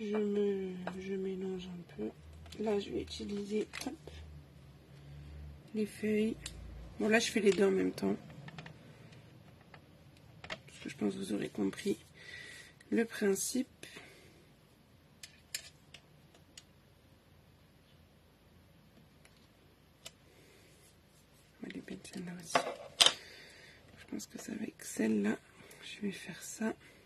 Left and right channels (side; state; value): both; identical; correlation 1.00